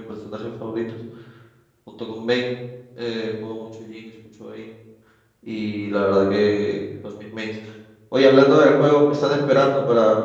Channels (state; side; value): identical; both; correlation 1.00